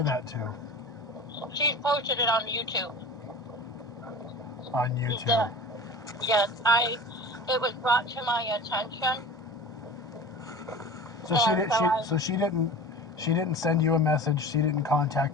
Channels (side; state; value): both; normal; correlation 0.36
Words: that to? She posted it on YouTube. On YouTube. Yes, it was brought to my attention. So she didn't send you a message. She didn't